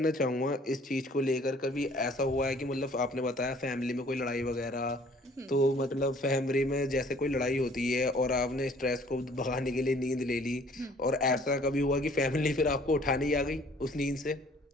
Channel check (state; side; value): normal; both; correlation 0.56